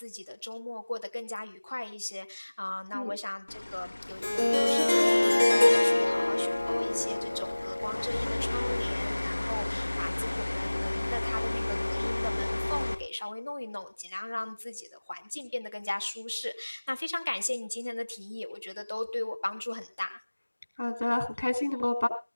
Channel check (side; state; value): both; inverted; correlation -1.00